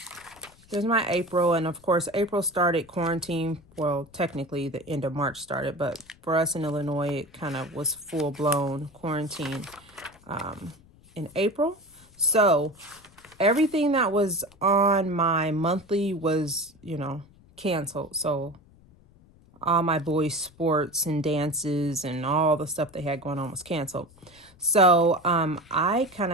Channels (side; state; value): left; noise; rumble, 27 dB below the sound